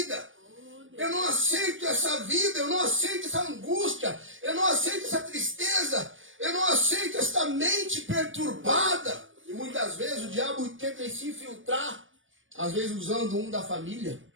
Eu não aceito essa vida, eu não aceito essa angústia, eu não aceito essa tristeza, eu não aceito essa mente perturbada. E muitas vezes o diabo tenta se infiltrar, às vezes usando um da família,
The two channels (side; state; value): left; late; 0.57 ms